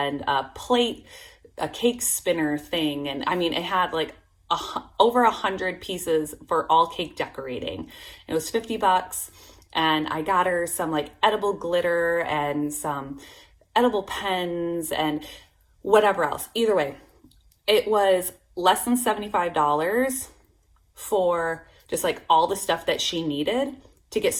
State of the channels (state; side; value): identical; both; correlation 1.00